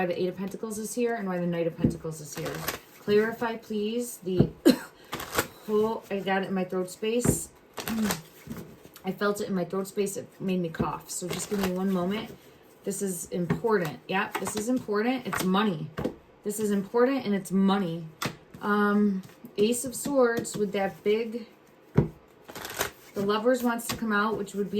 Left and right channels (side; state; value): both; identical; correlation 1.00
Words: the 8 of Pentacles is here and why the Knight of Pentacles is here. Clarify, please, the... Oh, I got it in my throat space. I felt it in my throat space. It made me cough. So just give me 1 moment. This is important. Yeah, this is important. It's money. This is important and it's money. Ace of Swords with that big... The Lovers wants to come out, which would